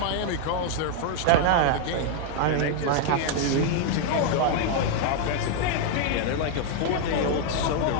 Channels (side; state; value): both; different; correlation 0.00